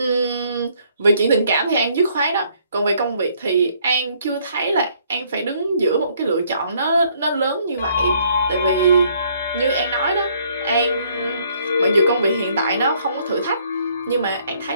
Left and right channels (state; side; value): inverted; both; correlation -0.65